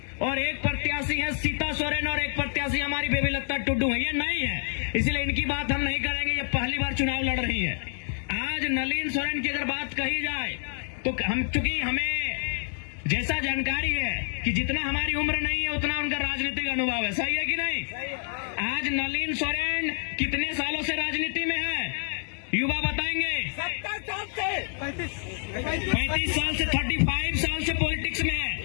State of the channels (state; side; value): silent; right; 60 dB below the other